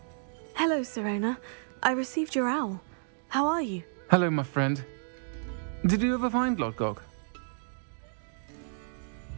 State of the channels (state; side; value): silent; left; digital silence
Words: Hello, Serona. I received your owl. How are you? Hello, my friend. Did you ever find Lodgok?